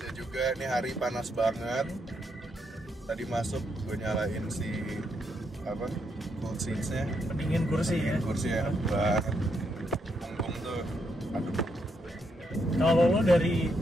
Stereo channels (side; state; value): both; normal; correlation 0.78